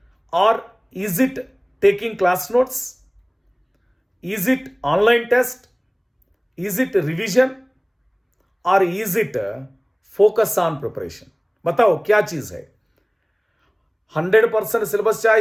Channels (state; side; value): identical; both; correlation 1.00